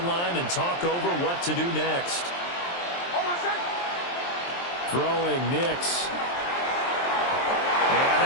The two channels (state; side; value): late; right; 23 ms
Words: and talk over what to do next. Throwing Nix. And